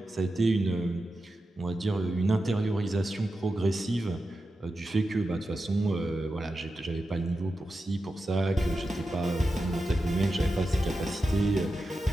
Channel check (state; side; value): normal; both; correlation 0.90